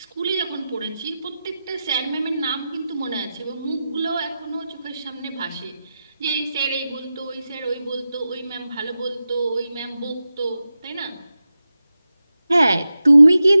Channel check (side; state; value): both; inverted; correlation -0.92